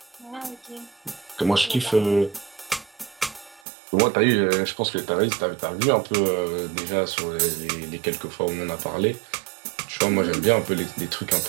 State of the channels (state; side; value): drops out; left; at 3.6 s